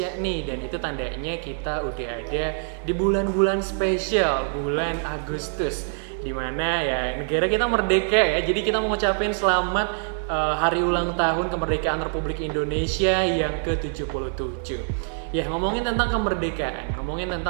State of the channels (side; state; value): left; silent; digital silence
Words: nih, dan itu tandanya kita udah ada di bulan-bulan spesial, bulan Agustus, dimana ya negara kita merdeka ya. Jadi kita mau ngucapin selamat hari ulang tahun kemerdekaan Republik Indonesia yang ke-77. Ya, ngomongin tentang kemerdekaan, ngomongin